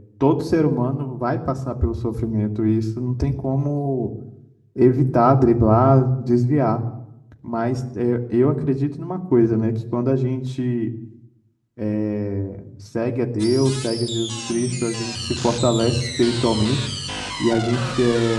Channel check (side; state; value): both; identical; correlation 1.00